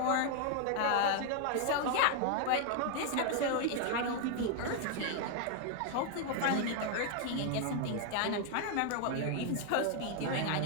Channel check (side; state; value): both; different; correlation 0.00